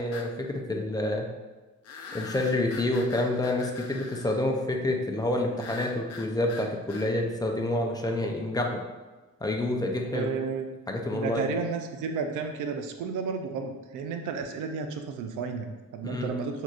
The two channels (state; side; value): normal; both; correlation 0.48